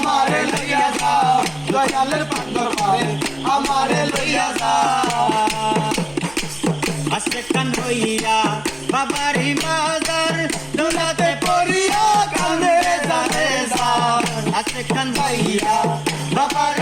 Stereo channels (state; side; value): noise; right; hum, 25 dB below the sound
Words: লইয়া যাও। দয়ালের পাগর বারে আমারে লইয়া যাও। আজকে কান হইয়া বাবারি মাজার দোলাতে পড়িয়া কান্দে যাবে যাও। আজকে কান হইয়া